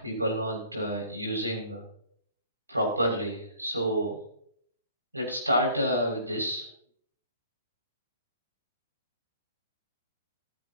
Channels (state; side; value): inverted; both; correlation -0.53